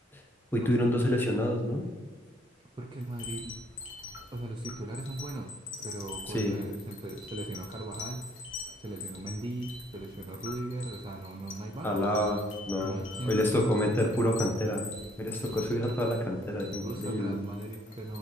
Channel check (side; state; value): both; normal; correlation 0.66